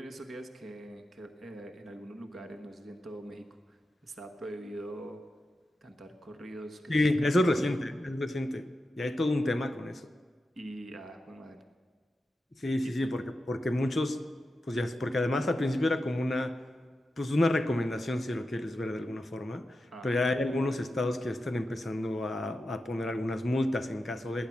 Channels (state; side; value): normal; both; correlation 0.90